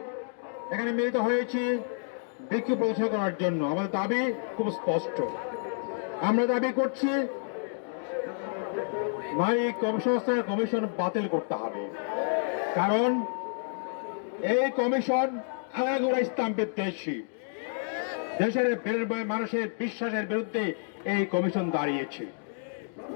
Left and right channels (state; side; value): silent; right; digital silence